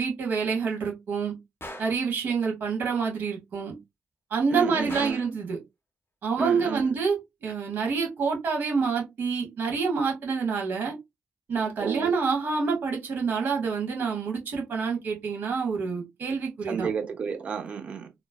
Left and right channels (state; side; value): quieter; left; 5.0 dB